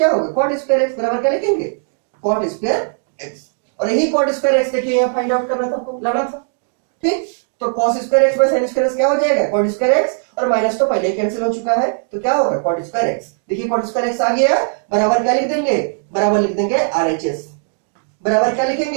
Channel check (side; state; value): left; silent; 67 dB below the other